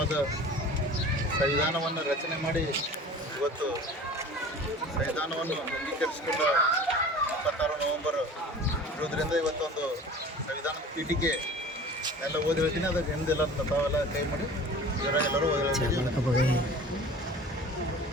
ಸಂವಿಧಾನವನ್ನು ರಚನೆ ಮಾಡಿ ಇವತ್ತು ಸಂವಿಧಾನವನ್ನು ಅಂಗೀಕರಿಸಿಕೊಂಡ 26 ನವೆಂಬರ್ ಇರೋದ್ರಿಂದ ಇವತ್ತೊಂದು ಸಂವಿಧಾನದ ಪೀಠಿಕೆ ಎಲ್ಲ ಓದಿ ಹೇಳ್ತೀನಿ. ಅದಕ್ಕೆ ಹಿಂದೆಲ್ಲ ತಾವೆಲ್ಲ ಕೈ ಮಾಡಿ ಎಲ್ಲರೂ ಓದಿ ಹೇಳ್ತೀವಿ.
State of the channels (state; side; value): normal; both; correlation 0.42